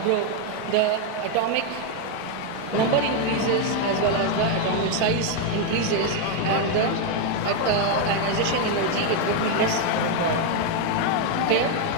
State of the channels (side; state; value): both; different; correlation 0.01